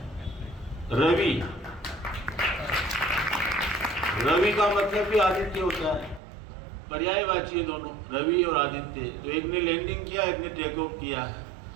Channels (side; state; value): left; drops out; at 6.2 s